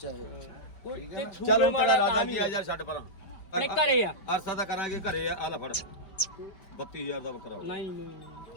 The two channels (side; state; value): right; late; 5.2 ms